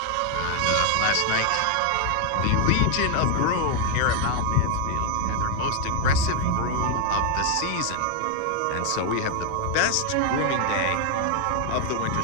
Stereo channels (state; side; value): different; both; correlation 0.00